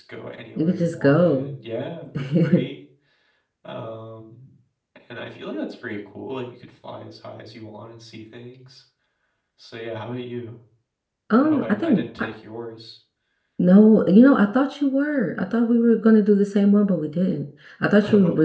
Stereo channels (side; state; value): both; identical; correlation 1.00